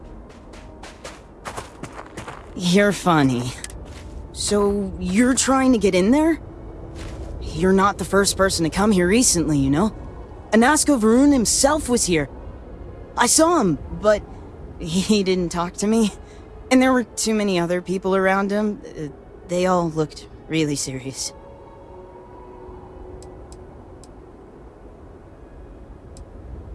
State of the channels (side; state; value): both; identical; correlation 1.00